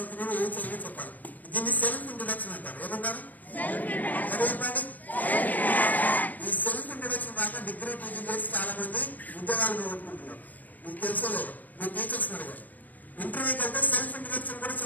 ఏ చదివి చెప్పాలి. దీన్ని సెల్ఫ్ ఇంట్రొడక్షన్ అంటారు. ఏమంటారు? చెప్పండి. ఈ సెల్ఫ్ ఇంట్రొడక్షన్ దాకా డిగ్రీ పీజీ చేసి చాలా మంది ఉద్యోగాలు పోగొట్టుకుంటున్నారు. మీకు తెలుసో లేదు, మీ టీచర్స్ అడిగారు. ఇంటర్వ్యూకి వెళ్తే సెల్ఫ్ ఇంట్రొడక్షన్ కూడా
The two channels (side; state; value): right; late; 0.082 ms